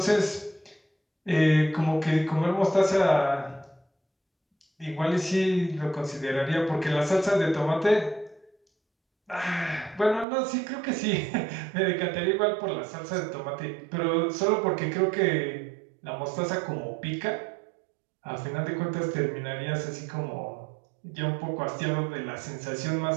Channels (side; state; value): left; drops out; at 10.2 s